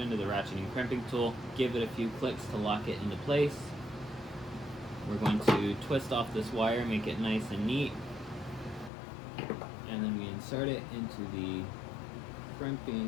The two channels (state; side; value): drops out; right; at 8.9 s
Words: the ratcheting crimping tool. Give it a few clicks to lock it into place. We're going to twist off this wire, make it nice and neat. And then we insert it into the